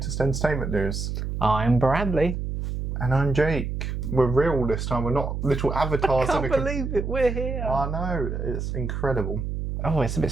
entertainment news. I'm Bradley. And I'm Jake. We're real this time. We're not little avatars. I can't believe it. We're here. I know. It's incredible. Oh, it's a bit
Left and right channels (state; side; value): noise; right; hum, 3 dB below the sound